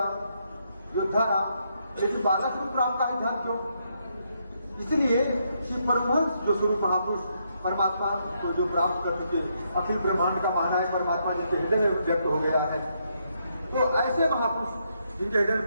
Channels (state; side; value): inverted; both; correlation -0.77